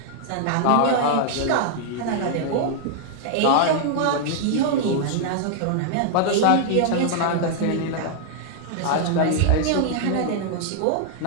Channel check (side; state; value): both; different; correlation -0.01